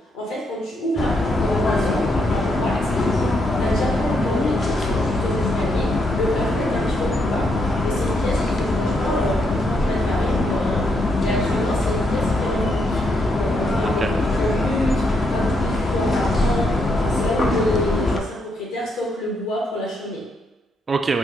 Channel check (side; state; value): both; normal; correlation 0.78